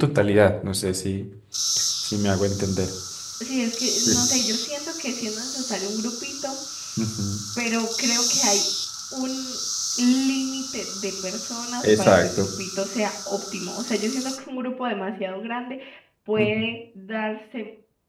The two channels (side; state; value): both; identical; correlation 1.00